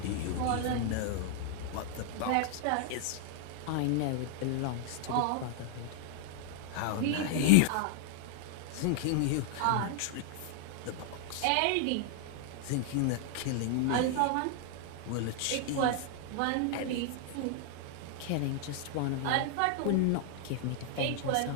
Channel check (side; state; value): both; different; correlation 0.00